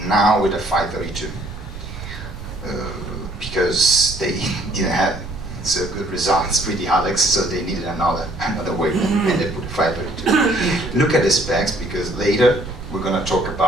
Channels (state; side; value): noise; right; rumble, 11 dB below the sound